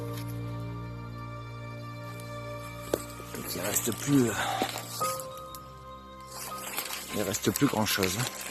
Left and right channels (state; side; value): identical; both; correlation 1.00